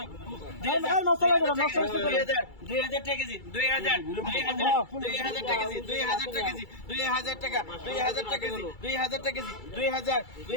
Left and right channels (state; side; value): late; right; 2.3 ms